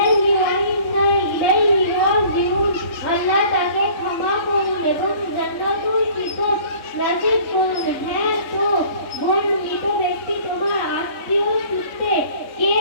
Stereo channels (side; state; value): right; late; 3.6 ms